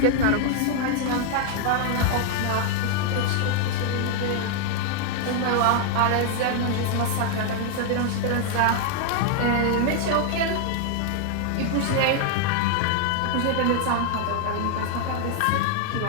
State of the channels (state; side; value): different; both; correlation 0.00